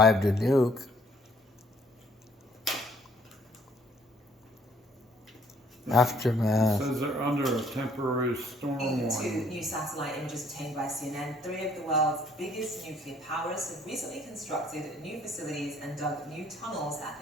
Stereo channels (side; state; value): both; normal; correlation 0.63